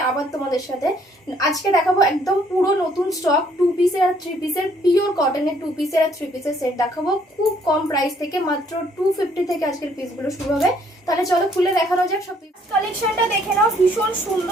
আবার তোমাদের সাথে। আজকে দেখাবো একদম পুরো নতুন স্টক 2 পিসের আর 3 পিসের পিওর কটনের 2 পিসের আর 3 পিসের সেট দেখাবো খুব কম প্রাইস থেকে, মাত্র 250 থেকে আজকের পিসগুলো শুরু হবে। তাহলে চলো খুলে দেখানো যাক সব কালেকশনটা দেখে নাও। ভীষণ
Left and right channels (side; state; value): both; normal; correlation 0.64